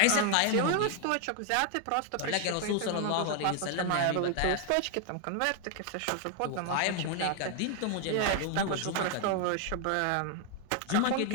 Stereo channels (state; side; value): different; both; correlation 0.00